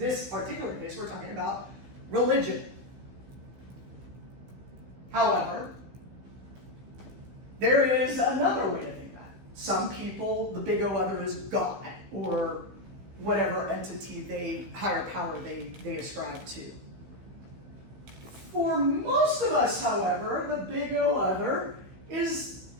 particular case, we're talking about religion. However, there is another way to think that. Some people, the big O other is God or whatever entity higher power they ascribe to. For most of us, however, the big O other is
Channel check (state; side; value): late; left; 16 ms